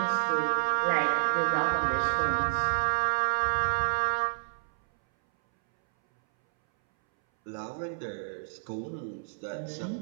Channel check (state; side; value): silent; left; 58 dB below the other